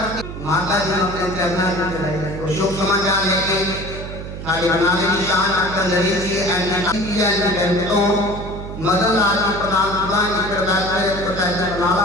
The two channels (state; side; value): noise; right; hum, 9 dB below the sound